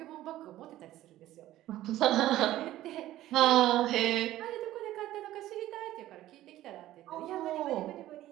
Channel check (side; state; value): left; quieter; 14.5 dB